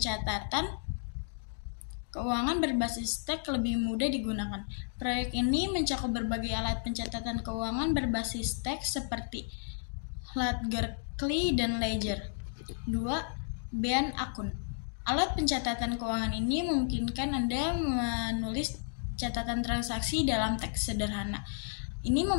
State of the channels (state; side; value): silent; right; digital silence